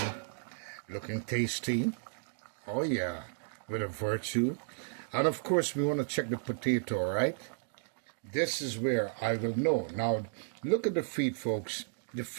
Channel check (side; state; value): left; silent; digital silence